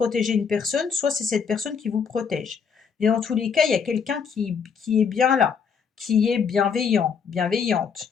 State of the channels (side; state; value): right; quieter; 6.4 dB